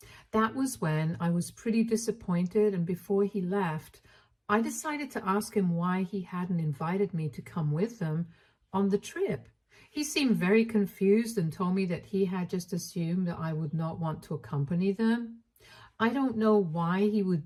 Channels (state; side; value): identical; both; correlation 1.00